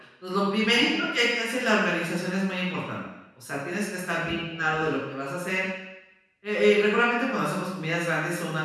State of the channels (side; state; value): both; identical; correlation 1.00